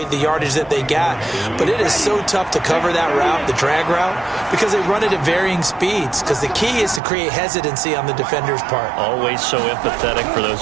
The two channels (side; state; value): left; drops out; at 7.0 s